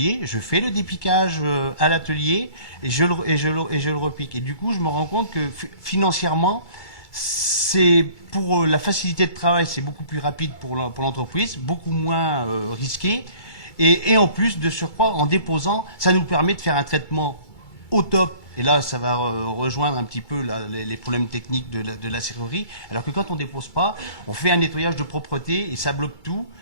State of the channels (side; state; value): right; late; 2.3 ms